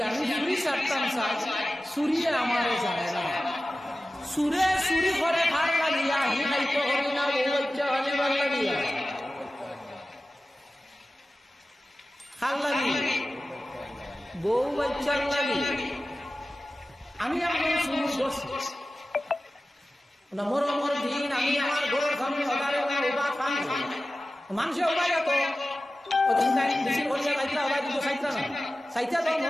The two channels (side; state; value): both; normal; correlation 0.95